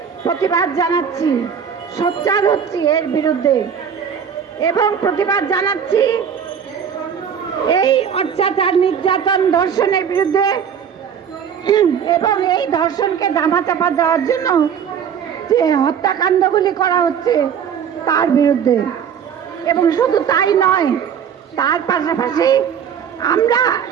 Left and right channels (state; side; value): quieter; left; 7.8 dB